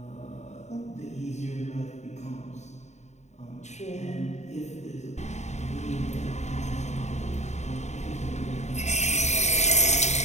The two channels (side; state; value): right; late; 0.33 ms